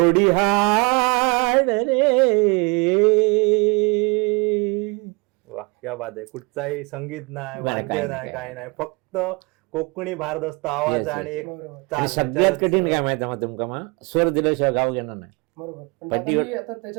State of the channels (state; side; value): quieter; left; 28.8 dB